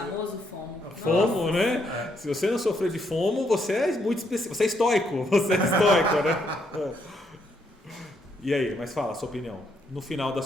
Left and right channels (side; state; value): both; normal; correlation 0.74